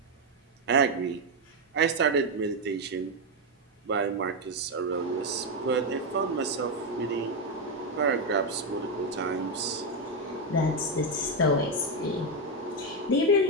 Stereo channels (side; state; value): both; normal; correlation 0.05